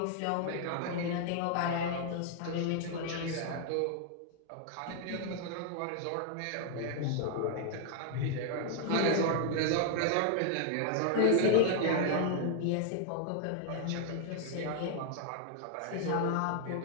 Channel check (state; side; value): different; both; correlation 0.00